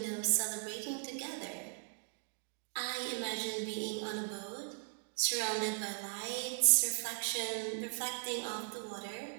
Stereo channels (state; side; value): silent; left; digital silence